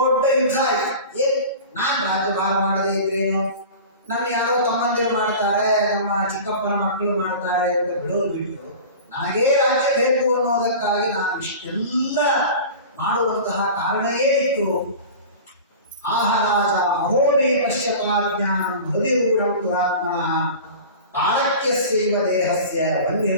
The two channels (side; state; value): both; inverted; correlation -0.36